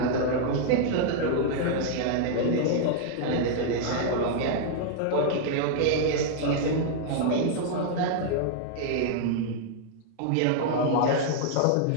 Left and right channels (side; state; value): both; different; correlation -0.01